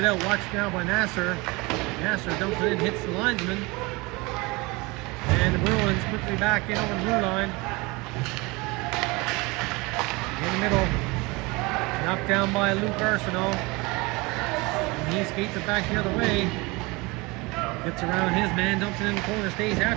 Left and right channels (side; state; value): left; quieter; 24.8 dB